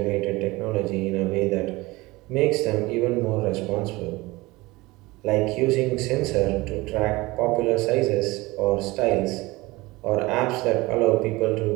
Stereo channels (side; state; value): left; quieter; 21.4 dB